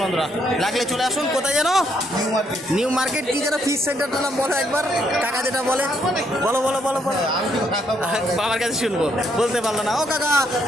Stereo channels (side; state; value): both; normal; correlation 0.72